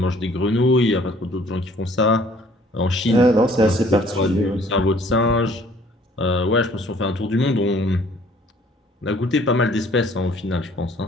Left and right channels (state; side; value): normal; both; correlation 0.57